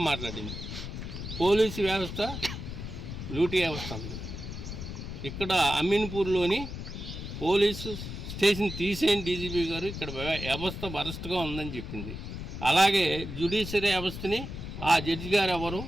మాట్లాడింది. పోలీసు వ్యవస్థ లూటీ వ్యవస్థ ఉంది. ఇక్కడ అమీన్పూర్లోని పోలీసు స్టేషన్ తీసేయండి డీజీపీ గారు, ఇక్కడ వ్యవస్థ వరస్ట్గా ఉందని చెప్పింది. అలాగే జ్యుడిషియరీ వ్యవస్థని ఆ జడ్జి గారు ఎవరు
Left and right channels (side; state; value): left; noise; rumble, 8 dB below the sound